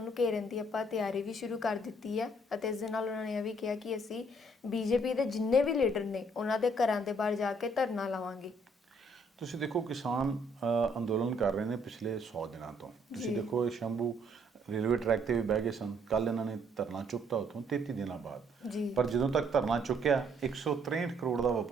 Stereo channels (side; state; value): both; normal; correlation 0.66